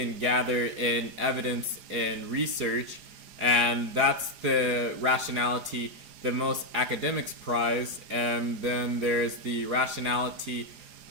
gather in evidence and research. And that's the rationality that most academics prize. And then there's the rationality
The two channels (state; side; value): late; left; 4.9 ms